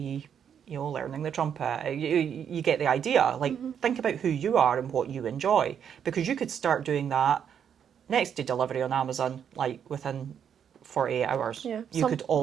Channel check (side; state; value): left; quieter; 8.3 dB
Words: you know, learning the trumpet. You get the idea. Like, think about who you are and what you enjoy, because you could start doing that next day delivery on Amazon, like within 48 hours. Yeah, you could